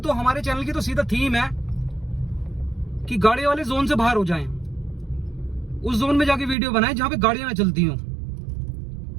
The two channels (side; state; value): left; drops out; at 6.6 s